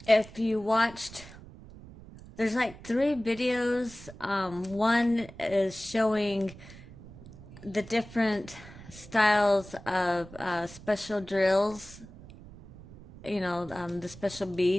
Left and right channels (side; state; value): right; noise; rumble, 18 dB below the sound